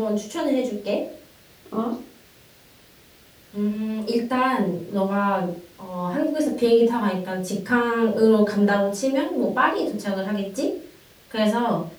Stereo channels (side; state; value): both; identical; correlation 1.00